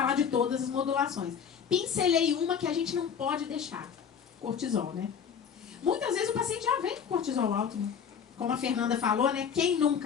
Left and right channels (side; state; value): right; quieter; 7.3 dB